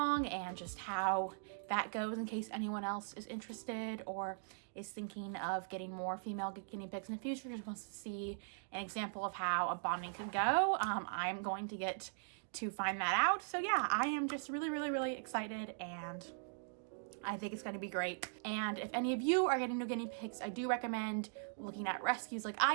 and just how that goes in case anyone else is interested or is thinking of getting more female guinea pigs in the future, just wants to see an example of how a bonding could go. I'm going to get to find that out. So yeah, I am just really excited, and I think it's going to be great. And if any of you are getting new guinea pigs, I do recommend looking at rescues like I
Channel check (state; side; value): silent; left; digital silence